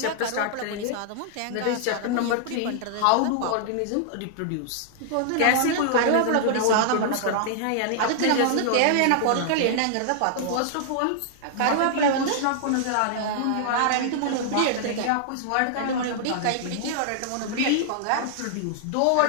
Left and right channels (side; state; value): both; different; correlation -0.01